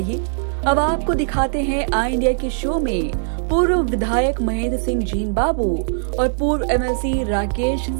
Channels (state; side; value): silent; left; 66 dB below the other